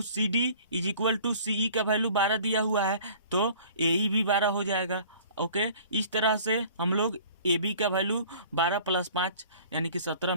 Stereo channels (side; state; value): both; inverted; correlation -0.49